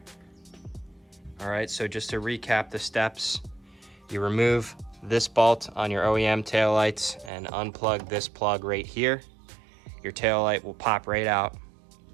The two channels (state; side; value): drops out; left; at 7.3 s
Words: All right, so just to recap the steps, you remove this bolt on your OEM taillights and unplug this plug right here. Your taillight will pop right out.